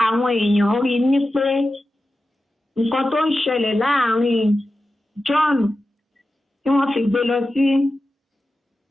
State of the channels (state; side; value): normal; both; correlation 0.92